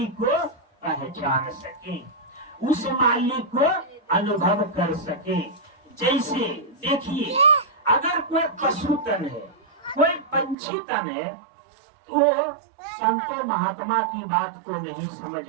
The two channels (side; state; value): left; drops out; at 10.6 s